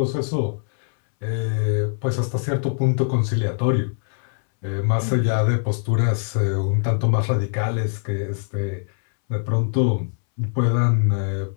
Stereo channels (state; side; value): silent; right; 64 dB below the other